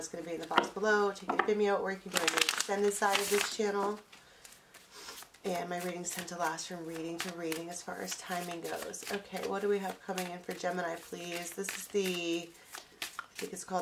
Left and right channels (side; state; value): both; identical; correlation 1.00